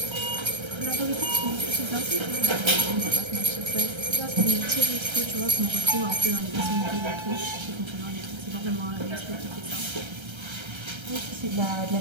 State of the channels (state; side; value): late; left; 1.3 ms